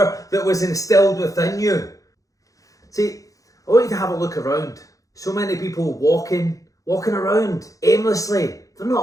that was instilled within you. See, I want you to have a look around. So many people walking around aimlessly. They're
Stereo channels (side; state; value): right; late; 0.16 ms